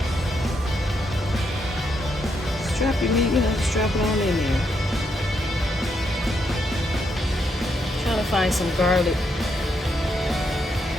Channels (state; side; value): normal; both; correlation 0.79